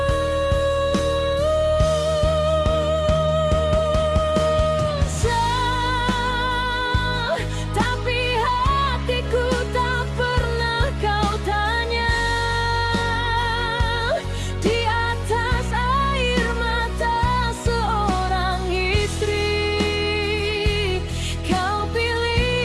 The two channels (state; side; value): identical; both; correlation 1.00